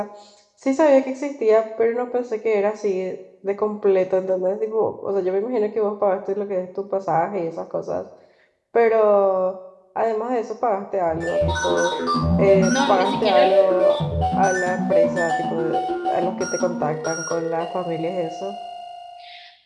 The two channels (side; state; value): both; identical; correlation 1.00